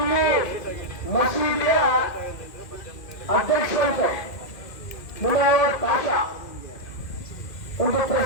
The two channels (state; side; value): late; right; 2.1 ms